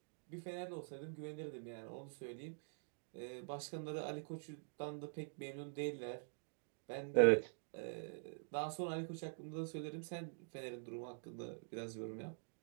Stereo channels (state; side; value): silent; left; digital silence